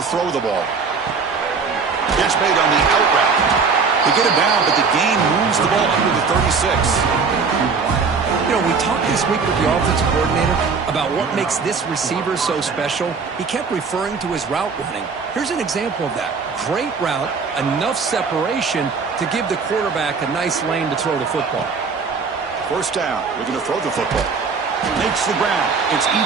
throw the ball. Catch made on the out route. They get it down, but the gain moves the ball under the 36. You know, we talked this week with the offensive coordinator about what makes this receiver so special. He kept referring to his route running. Here's an example of that. Great route, enough separation to give the quarterback a nice lane to throw the football. First down, looking to throw the football. Makes the ground. It's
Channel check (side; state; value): left; quieter; 5.1 dB